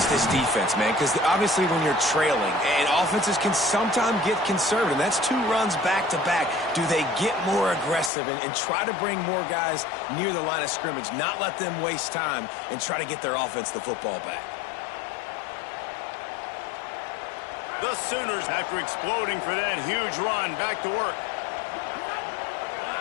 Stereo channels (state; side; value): drops out; right; at 8.1 s